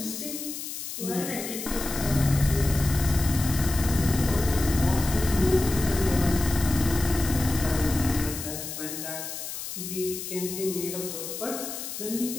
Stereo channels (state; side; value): noise; left; hiss, 8 dB below the sound